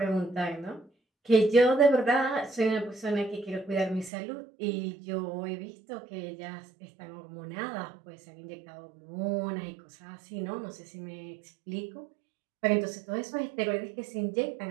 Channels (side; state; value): left; drops out; at 4.1 s